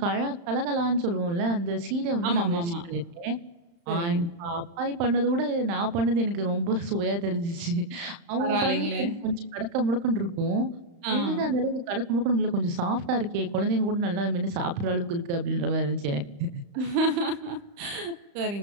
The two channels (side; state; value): left; late; 35 ms